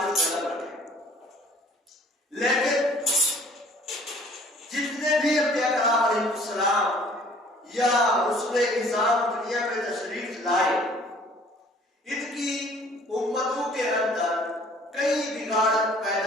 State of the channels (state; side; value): normal; both; correlation 0.54